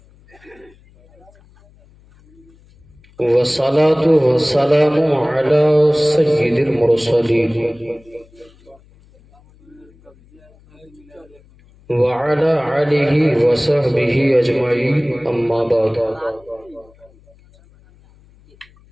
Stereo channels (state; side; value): noise; left; hum, 29 dB below the sound